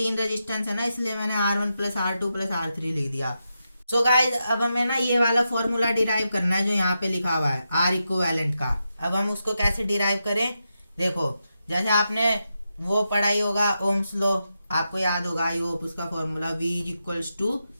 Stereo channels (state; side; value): inverted; both; correlation -0.87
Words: रेजिस्टेंस है ना, इसलिए मैंने R1 plus R2 plus R3 लिख दिया। सो गाइस अब हमें ना ये वाला फॉर्मूला डिराइव करना है जो यहाँ पे लिखा हुआ है R इक्विवेलेंट का। अब हम उसको कैसे डिराइव करें, देखो जैसे आपने वो पढ़ा ही होगा ओम्स लॉ, आपको याद होगा आई होप उसका formula V equals to